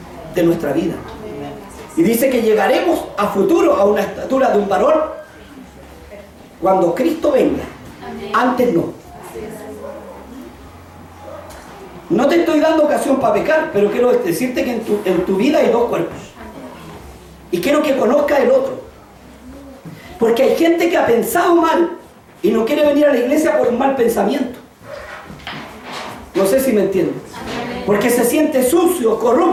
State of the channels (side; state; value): both; identical; correlation 1.00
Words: de nuestra vida. Y dice que llegaremos a futuro a una estatura de un varón cuando Cristo venga. Antes no. No te estoy dando ocasión para pecar, pero quiero decirte que en tu vida hay dos cuerpos. Y quiero que conozcas el otro. Porque hay gente que ha pensado mal y no quiere venir a la iglesia por un mal pensamiento. No sé si me entiendes. Porque se siente sucio,